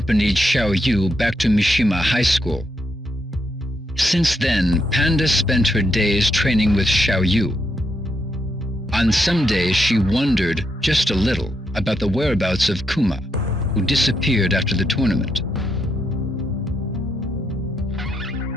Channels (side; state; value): both; normal; correlation 0.79